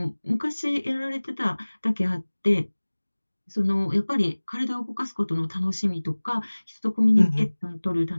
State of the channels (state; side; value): inverted; both; correlation -1.00